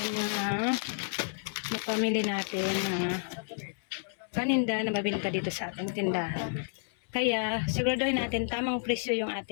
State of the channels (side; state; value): right; silent; 57 dB below the other